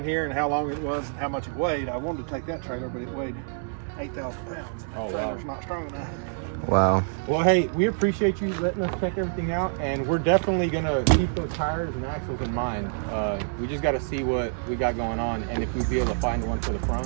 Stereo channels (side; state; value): left; silent; digital silence